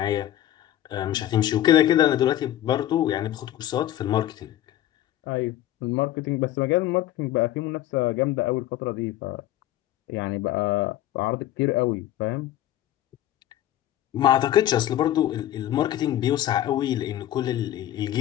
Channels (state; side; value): quieter; right; 13.0 dB